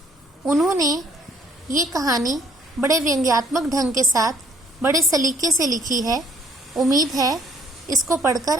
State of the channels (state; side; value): normal; both; correlation 0.62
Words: उन्होंने ये कहानी बड़े व्यंग्यात्मक ढंग के साथ बड़े सलीके से लिखी है। उम्मीद है इसको पढ़कर